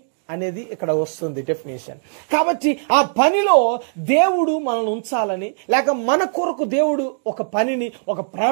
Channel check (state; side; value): silent; left; digital silence